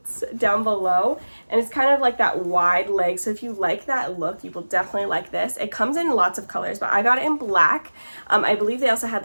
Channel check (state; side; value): inverted; both; correlation -1.00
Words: down below, and it's kind of like that wide leg. So if you like that look, you will definitely like this. It comes in lots of colors, but I got it in black. I believe they also had